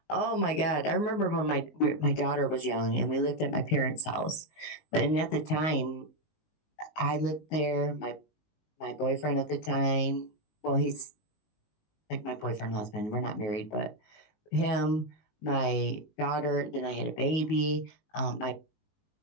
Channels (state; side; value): late; right; 19 ms